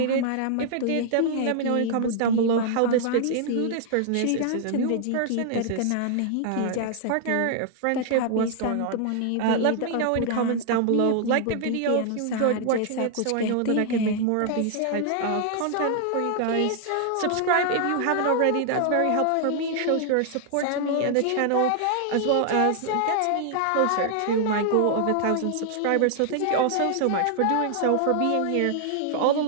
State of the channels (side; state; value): both; different; correlation 0.00